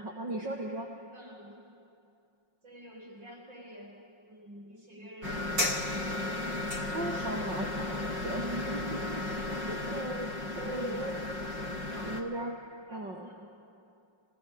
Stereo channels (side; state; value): left; late; 5.5 ms